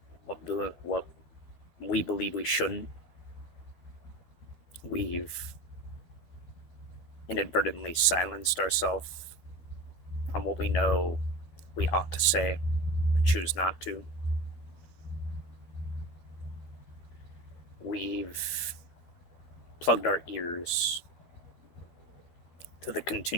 what we believe we shouldn't. We've inadvertently silenced ourselves on what we know we ought to say, but choose not to. We've plugged our ears to the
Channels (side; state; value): right; late; 12 ms